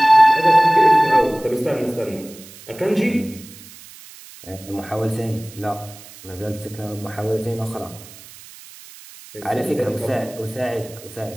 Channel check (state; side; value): noise; right; hiss, 19 dB below the sound